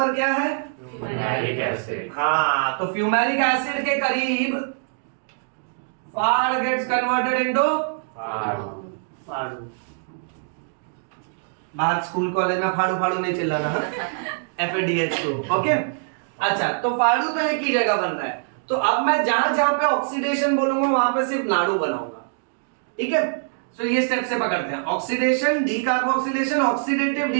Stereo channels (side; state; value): left; silent; digital silence